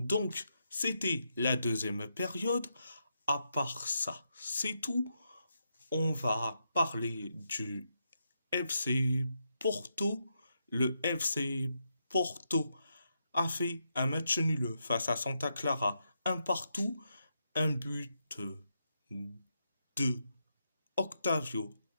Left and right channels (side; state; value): both; inverted; correlation -0.82